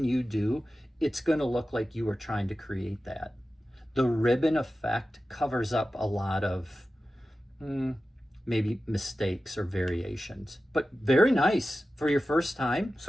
you do, it's going to look like you were trying to create that. The ribbon effect covers up a lot of maybe mistakes or variations, but very nice for your first time.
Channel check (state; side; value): normal; both; correlation 0.94